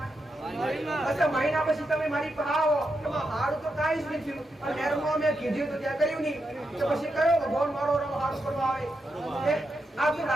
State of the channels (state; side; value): normal; both; correlation 0.85